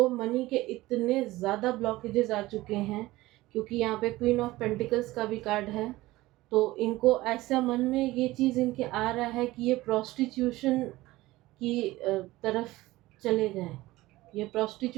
मनी के इतने ज़्यादा ब्लॉकेजेस आ चुके हैं, क्योंकि यहाँ पे क्वीन ऑफ पेंटिकल्स का भी कार्ड है। तो इनको ऐसा मन में ये चीज़ इनके आ रहा है कि ये प्रोस्टिट्यूशन की तरफ चले जाएं, ये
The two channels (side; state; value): left; quieter; 18.3 dB